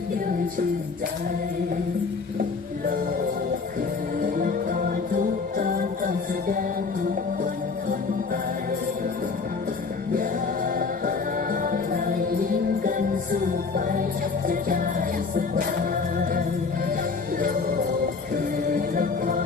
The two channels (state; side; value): quieter; right; 4.7 dB